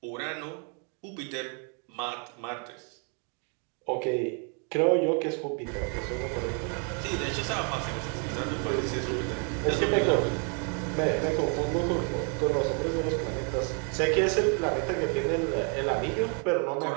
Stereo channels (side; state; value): left; quieter; 39.0 dB